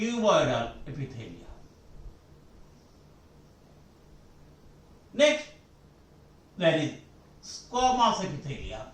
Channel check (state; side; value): identical; both; correlation 1.00